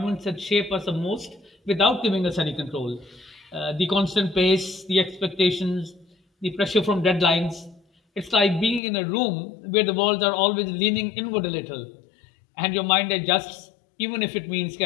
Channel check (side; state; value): right; drops out; at 8.8 s